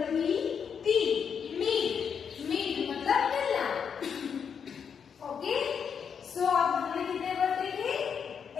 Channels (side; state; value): right; quieter; 7.0 dB